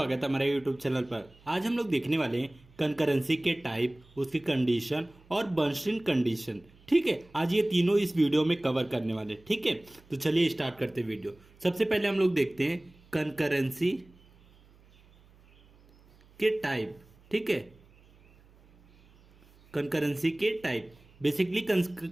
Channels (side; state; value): right; noise; hum, 28 dB below the sound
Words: है हमारे यूट्यूब चैनल पर। आज हम लोग देखने वाले हैं कंकरेंसी के टाइप, उसकी कंडीशन और बर्नस्टीन कंडीशन। ठीक है, आज ये तीनों इस वीडियो में कवर करने वाले। ठीक है, तो चलिए स्टार्ट करते हैं वीडियो। सबसे पहले हम लोग देखते हैं कंकरेंसी के टाइप। ठीक है, कंकरेंसी के टाइप बेसिकली